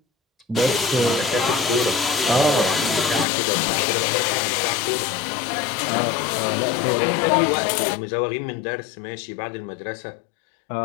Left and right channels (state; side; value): drops out; right; at 3.2 s